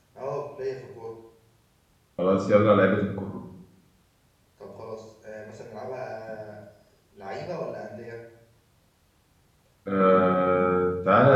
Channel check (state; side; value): identical; both; correlation 1.00